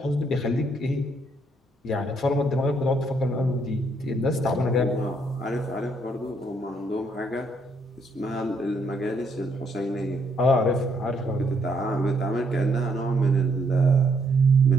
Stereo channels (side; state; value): both; normal; correlation 0.72